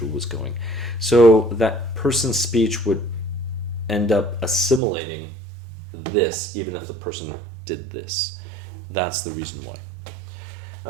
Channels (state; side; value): drops out; left; at 4.8 s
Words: was going. So that person's speech would end up assimilating this, even if the person did this. That's the reason why.